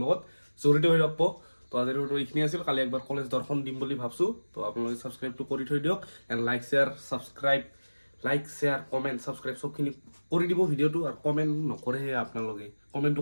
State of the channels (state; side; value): inverted; both; correlation -1.00